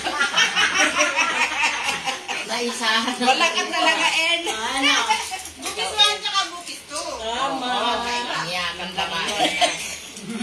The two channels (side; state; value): both; identical; correlation 1.00